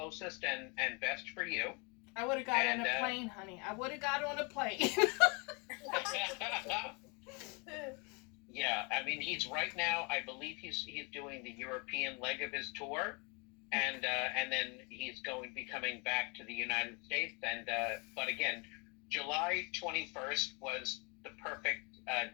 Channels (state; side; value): quieter; right; 31.3 dB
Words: and best for you. I would have got on a plane, honey. I would have got on a plane. Yeah, I mean, he's right now, I believe he's doing the European leg of his tour, and then he's going to be coming back to the United States. And but again, July 21st was the perfect